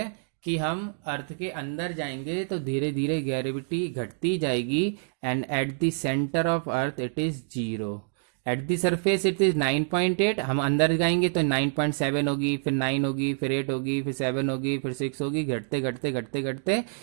कि हम अर्थ के अंदर जाएंगे तो धीरे धीरे ग्रेविटी घटती जाएगी, and at the centre of earth it is 0, eight the surface it is 9.8। हम अंदर जाएंगे तो 9.7 होगी, फिर 9 होगी, फिर 8 होगी, फिर 7 होगी, फिर 6 होगी, घटते घटते घटते घटते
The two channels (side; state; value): left; silent; digital silence